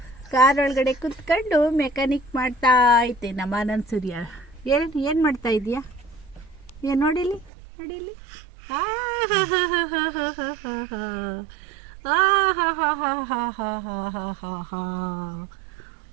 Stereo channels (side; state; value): left; drops out; at 7.5 s